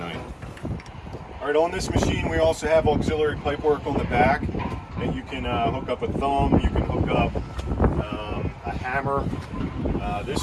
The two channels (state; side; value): identical; both; correlation 1.00